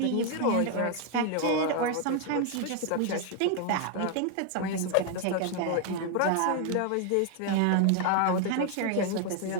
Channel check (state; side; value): different; both; correlation 0.00